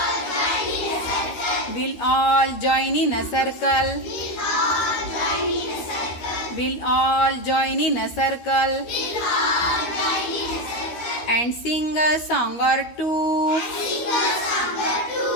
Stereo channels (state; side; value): late; right; 13 ms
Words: We'll all join in a circle. We'll all join in a circle. And sing a song or two.